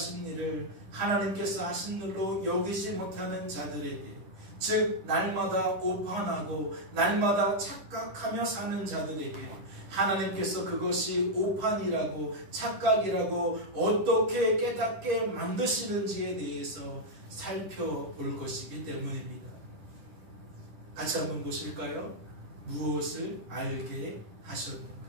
일을 하나님께서 하신 일로 여기지 못하는 자들에게, 즉 날마다 오판하고 날마다 착각하며 사는 자들에게 하나님께서 그것이 오판이라고 착각이라고 어떻게 깨닫게 만드시는지에 대해서 살펴볼 것이기 때문입니다. 같이 한번 보실까요? 무엇을 알게 하셨는가?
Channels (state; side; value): late; left; 10 ms